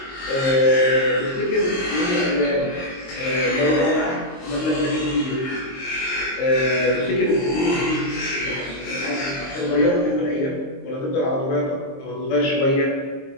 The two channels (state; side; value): late; right; 22 ms